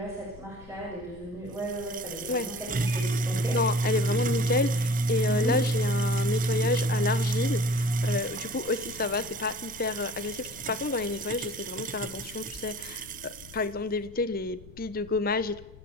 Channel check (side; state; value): left; noise; rumble, 20 dB below the sound